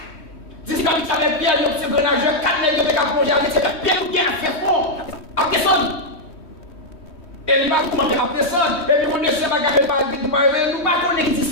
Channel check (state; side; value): late; right; 3.1 ms